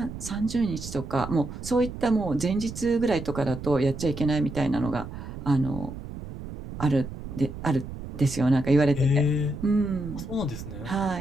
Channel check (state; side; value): noise; right; rumble, 10 dB below the sound